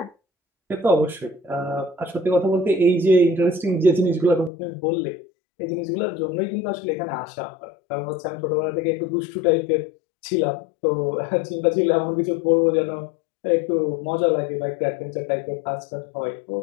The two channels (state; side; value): drops out; right; at 4.5 s